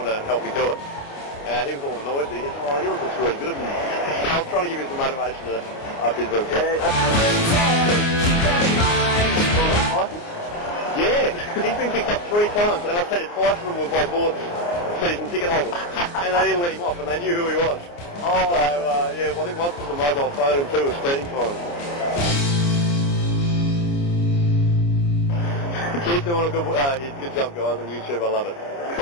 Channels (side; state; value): right; late; 29 ms